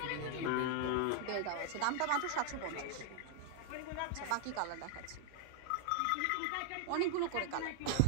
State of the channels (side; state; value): both; different; correlation 0.00